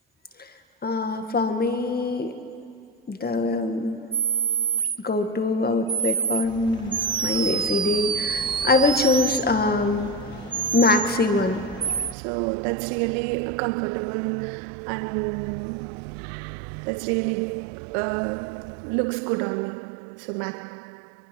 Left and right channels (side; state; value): left; drops out; at 12.2 s